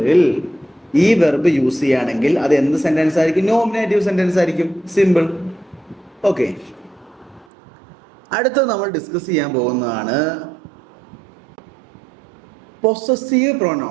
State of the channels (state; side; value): drops out; left; at 7.5 s